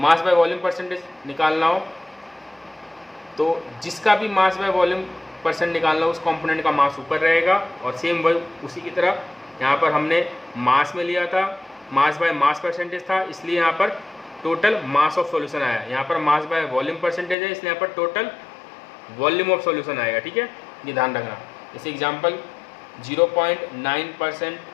बाय वॉल्यूम परसेंटेज निकालना हो तो जिसका भी मास बाय वॉल्यूम परसेंट निकालना हो उस कंपोनेंट का मास ऊपर रहेगा, और सेम वही उसी की तरह यहाँ पर हमने मास में लिया था, मास बाय मास परसेंटेज था, इसलिए यहाँ पर टोटल मास ऑफ सॉल्यूशन आया। यहाँ पर मास बाय वॉल्यूम परसेंटेज है, इसलिए यहाँ पर टोटल वॉल्यूम ऑफ सॉल्यूशन आएगा। ठीक है, ये ध्यान रखना। जैसे एग्जांपल 0.9%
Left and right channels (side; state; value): right; drops out; at 17.4 s